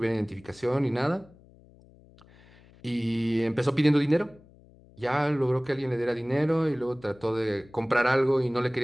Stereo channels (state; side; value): noise; left; hum, 26 dB below the sound